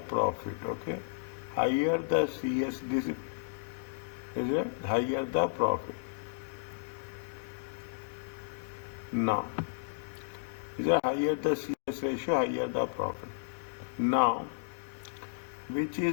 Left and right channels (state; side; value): silent; right; digital silence